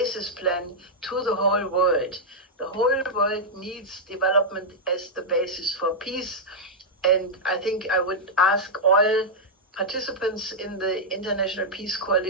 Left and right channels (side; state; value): both; normal; correlation -0.06